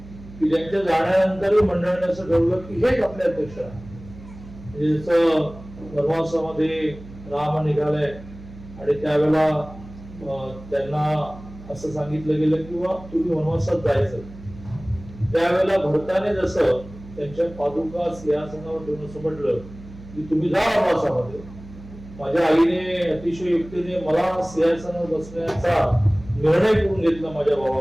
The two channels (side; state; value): right; noise; hum, 17 dB below the sound